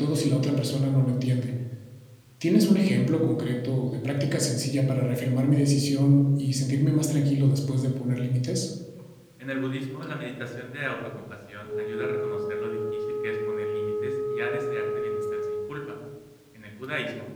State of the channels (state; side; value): identical; both; correlation 1.00